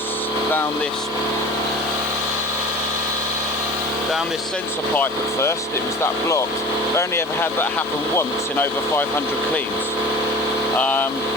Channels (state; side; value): normal; both; correlation 0.38